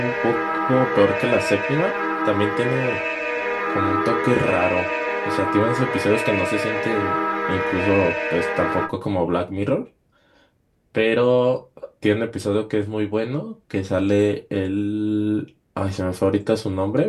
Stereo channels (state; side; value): identical; both; correlation 1.00